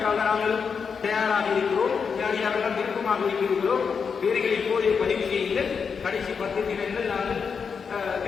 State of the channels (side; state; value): right; quieter; 6.0 dB